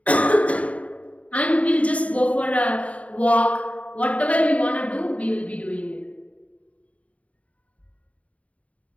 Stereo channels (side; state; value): right; late; 0.067 ms